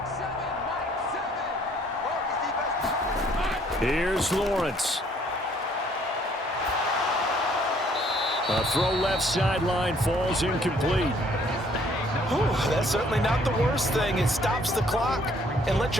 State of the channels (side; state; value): both; normal; correlation 0.62